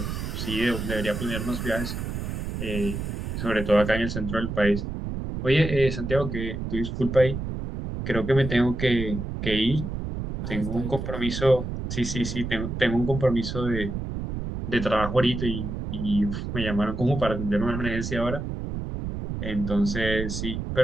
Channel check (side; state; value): right; noise; rumble, 5 dB below the sound